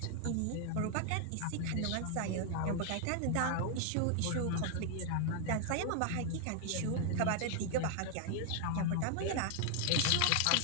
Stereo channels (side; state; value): both; different; correlation 0.00